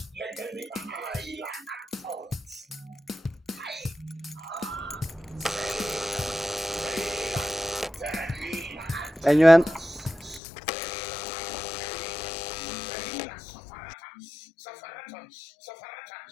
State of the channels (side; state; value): right; drops out; at 10.4 s